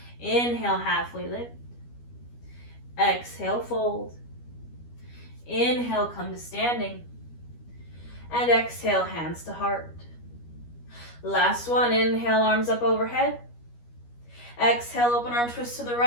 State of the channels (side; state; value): right; late; 12 ms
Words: Inhale, halfway lift. Exhale, fold. Inhale, come to standing. And exhale, hands to heart. Last one, inhale, arms up overhead. Exhale, open arm twist to the